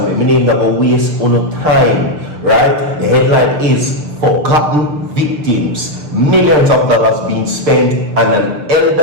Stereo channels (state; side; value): late; left; 6.7 ms